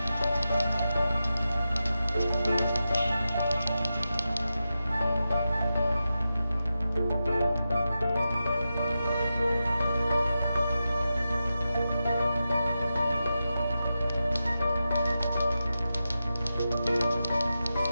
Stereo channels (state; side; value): inverted; both; correlation -0.90